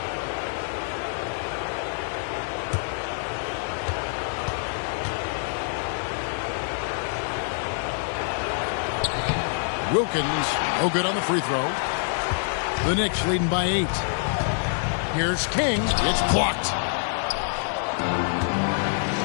Wilkins, no good on the free throw. The Knicks leading by 8. Here's King. It's blocked.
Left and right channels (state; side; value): silent; right; digital silence